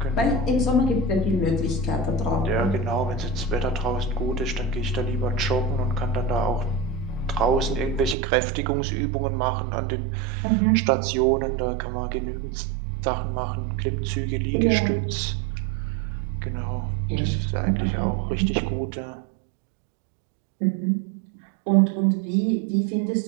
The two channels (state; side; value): drops out; left; at 8.2 s